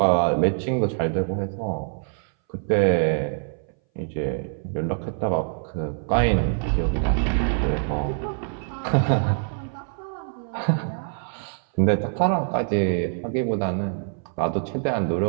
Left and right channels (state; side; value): silent; left; 60 dB below the other